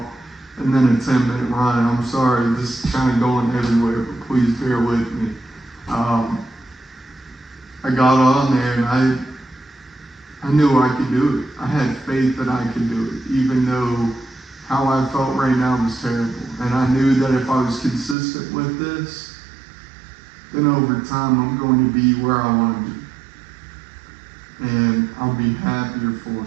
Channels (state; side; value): drops out; left; at 18.2 s